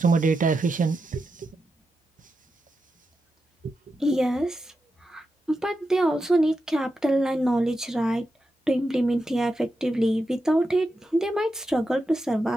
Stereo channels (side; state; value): both; normal; correlation 0.88